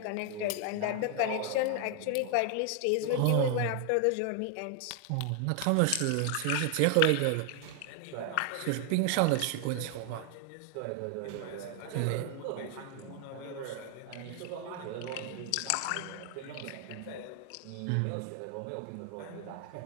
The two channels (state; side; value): different; both; correlation 0.00